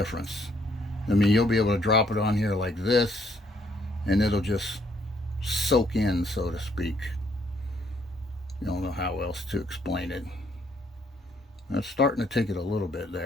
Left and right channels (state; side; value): normal; both; correlation 0.68